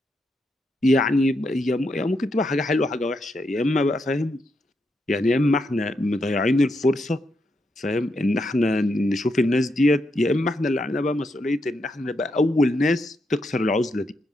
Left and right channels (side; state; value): both; normal; correlation 0.82